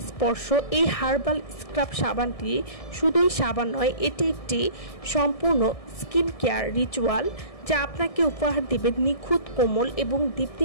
স্পর্শ। এই হার্বাল স্ক্রাব সাবানটি শুধুই সাবান নয়, এটি একটি সম্পূর্ণ স্কিন কেয়ার রিচুয়াল যা আপনাকে উপহার দেবে নিখুঁত, কোমল এবং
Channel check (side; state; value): right; late; 1.7 ms